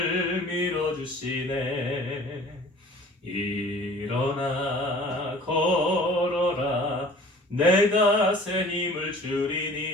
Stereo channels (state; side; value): normal; both; correlation 0.47